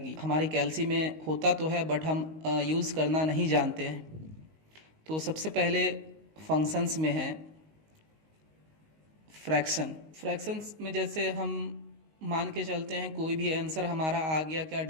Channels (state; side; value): late; left; 19 ms